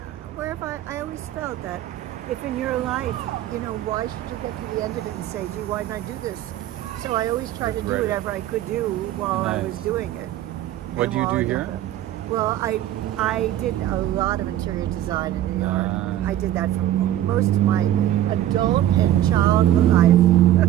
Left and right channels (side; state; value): left; quieter; 12.7 dB